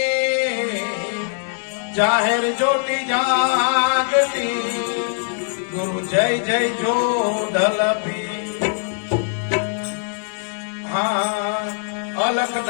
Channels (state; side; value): silent; right; digital silence